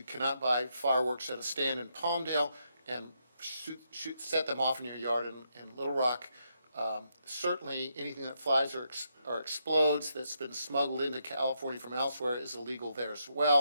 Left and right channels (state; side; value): inverted; both; correlation -0.79